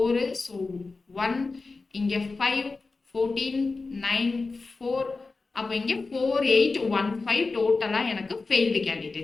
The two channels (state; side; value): quieter; right; 3.9 dB